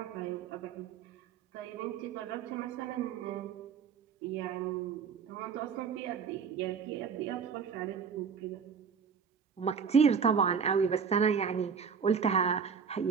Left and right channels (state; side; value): quieter; left; 6.5 dB